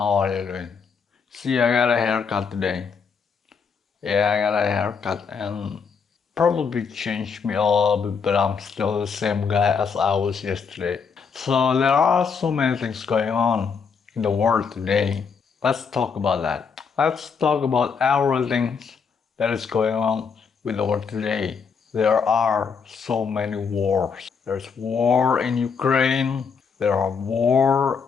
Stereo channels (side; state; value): right; quieter; 5.9 dB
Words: are you doing? See, I got a haircut today. Yeah, I got a haircut and probably changed me a little bit, but I'm still the same guy as I was yesterday. So there are so many things going on in the world today. Let's talk about that. Let's talk about everything that is going on with the world today. There are so many wars. There's war in Ukraine. There are